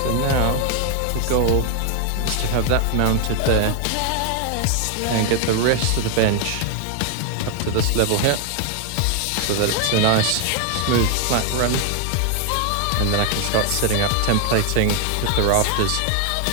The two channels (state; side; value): different; both; correlation 0.00